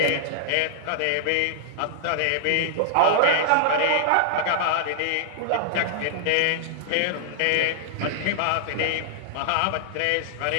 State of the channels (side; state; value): both; different; correlation -0.01